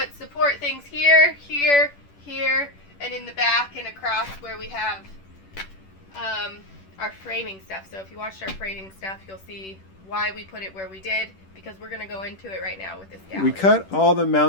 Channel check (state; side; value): late; right; 10 ms